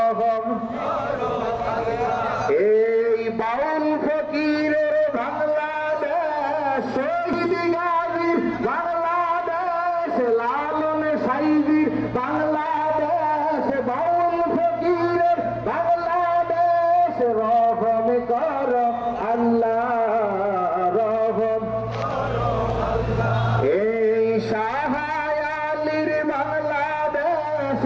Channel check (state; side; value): identical; both; correlation 1.00